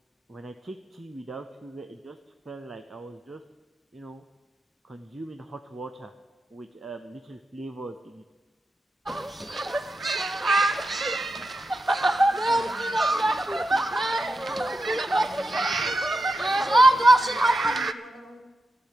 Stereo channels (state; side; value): normal; both; correlation 0.88